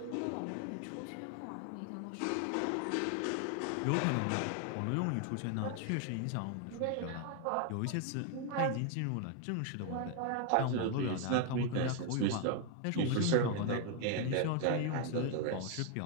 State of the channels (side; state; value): both; different; correlation 0.01